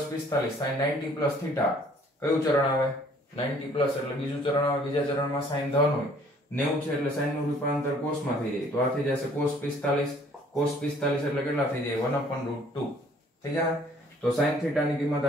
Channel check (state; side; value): normal; both; correlation 0.58